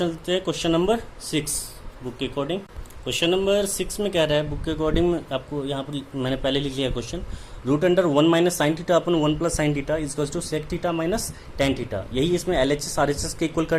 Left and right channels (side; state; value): both; identical; correlation 1.00